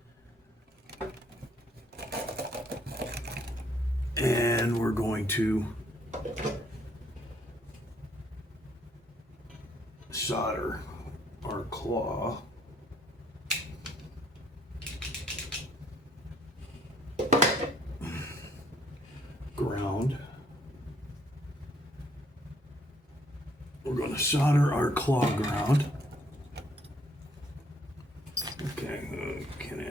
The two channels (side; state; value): both; normal; correlation 0.66